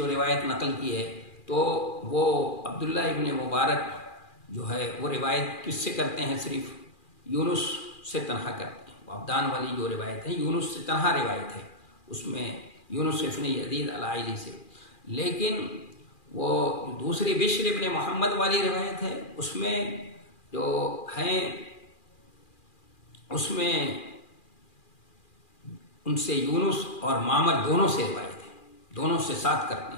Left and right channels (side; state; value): right; late; 2.4 ms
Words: روایت نقل کی ہے تو وہ عبداللہ ابن مبارک جو ہے وہ روایت کس سے کرتے ہیں؟ صرف یونس سے تنہا کرتے ہیں۔ وہ عبدان والی جو روایت ہے یونس سے تنہا روایت ہے، اس میں یونس ابن یزید الائلی سے، لیکن وہ دوسری بشر ابن محمد والی روایت ہے اس میں جو ہیں اس میں ان سے یونس اور معمر دونوں سے روایت ہے، دونوں سے ساتھ کرتے